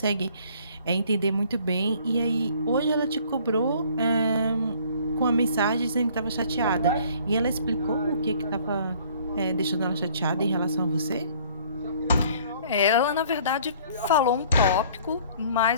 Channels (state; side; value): inverted; both; correlation -0.56